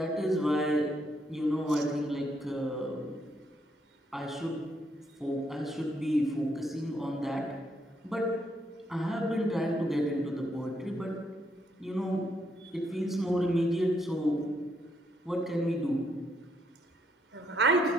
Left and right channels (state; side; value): normal; both; correlation 0.75